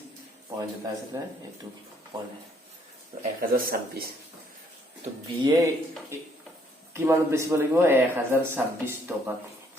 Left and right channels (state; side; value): normal; both; correlation 0.67